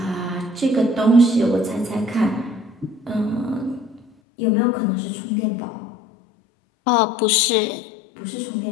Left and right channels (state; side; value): drops out; right; at 4.1 s